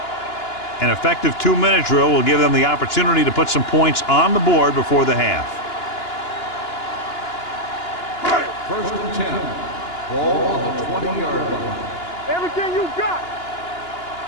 An effective 2-minute drill will give them the opportunity to put some points on the board before the half. First and 10. Ball on the 20-yard line. Everything you got.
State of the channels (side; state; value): right; late; 2.9 ms